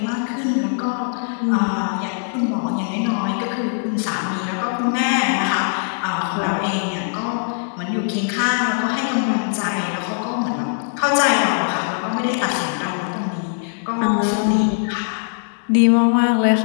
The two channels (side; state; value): right; silent; 65 dB below the other